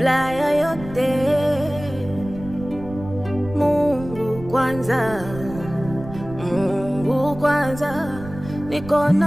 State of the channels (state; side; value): noise; right; rumble, 13 dB below the sound